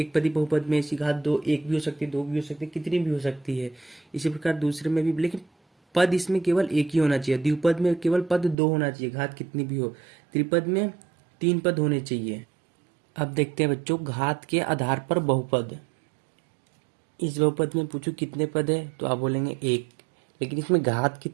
पदी बहुपद में इसकी घात 2, 1 भी हो सकती है, 2 भी हो सकती है, कितनी भी हो सकती है। इसी प्रकार दूसरे में भी, लेकिन पद इसमें केवल एक ही होना चाहिए। द्विपद में केवल पद 2 होना चाहिए, घात कितनी भी हो। त्रिपद में 3 पद होने चाहिए। अब देखते हैं बच्चों घात के आधार पर बहुपद। इस बहुपद में पूछो कितने पद है, तो आप बोलेंगे 1, लेकिन इसमें घात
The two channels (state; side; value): drops out; left; at 8.6 s